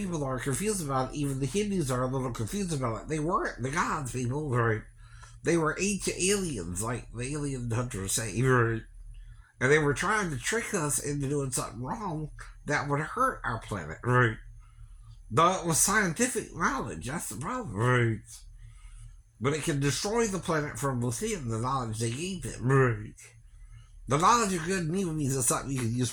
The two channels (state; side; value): identical; both; correlation 1.00